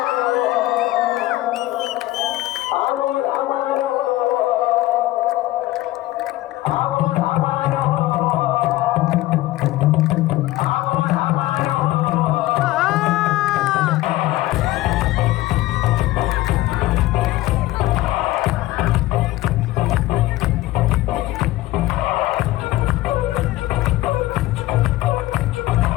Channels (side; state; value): right; quieter; 16.9 dB